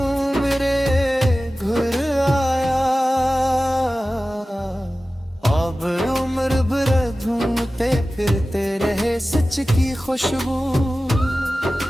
मेरे घर आया। अब उम्र भर ढूंढते फिरते रहे सच की खुशबू,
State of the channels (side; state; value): both; normal; correlation 0.96